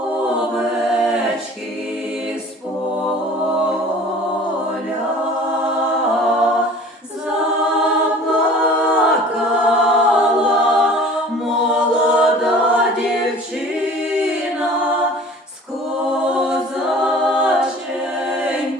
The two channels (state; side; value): normal; both; correlation 0.45